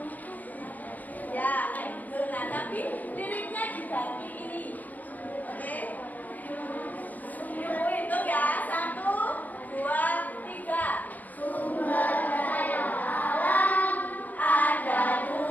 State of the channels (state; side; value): late; right; 0.081 ms